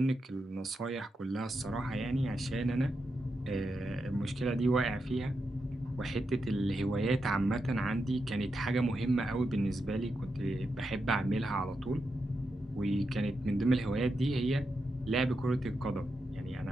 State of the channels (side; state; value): both; normal; correlation 0.86